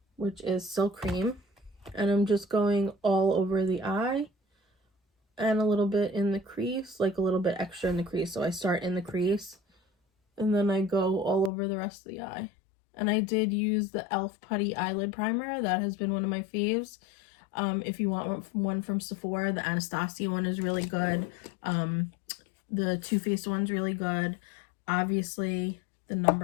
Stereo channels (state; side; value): drops out; right; at 11.5 s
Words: which is Silk Cream, and I'm just going all over the eye and a little bit in the crease, like a little bit extra in the crease. So I start in the crease and then I go all over the rest of the eye. And I did use the e.l.f. Putty Eyelid Primer. That has been one of my faves. If you want one from Sephora, the Anastasia one is really good. The Too Faced one's really good. Obviously, the